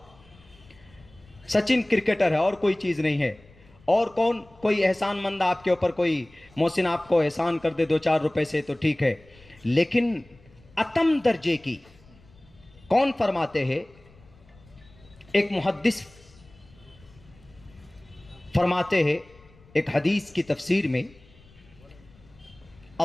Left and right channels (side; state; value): left; noise; rumble, 27 dB below the sound